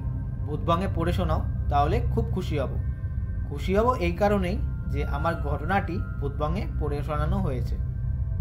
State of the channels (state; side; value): identical; both; correlation 1.00